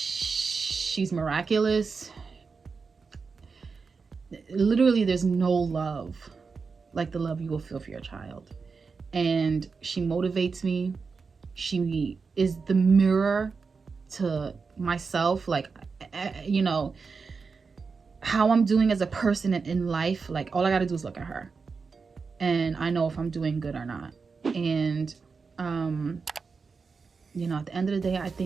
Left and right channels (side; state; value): left; quieter; 4.9 dB